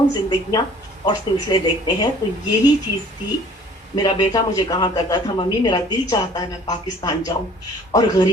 زندگیاں اور سلسلے دیکھتے ہیں۔ تو یہی چیز تھی، میرا بیٹا مجھے کہا کرتا تھا ممی میرا دل چاہتا ہے میں پاکستان جاؤں اور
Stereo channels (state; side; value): normal; both; correlation 0.52